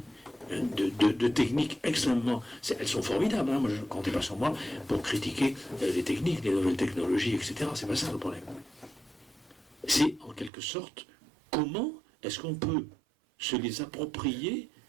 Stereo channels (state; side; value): drops out; left; at 10.5 s